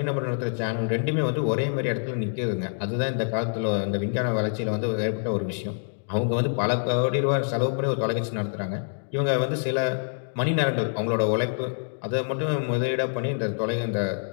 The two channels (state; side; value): silent; right; digital silence